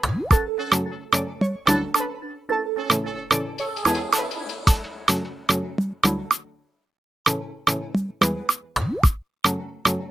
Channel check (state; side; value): normal; both; correlation 0.90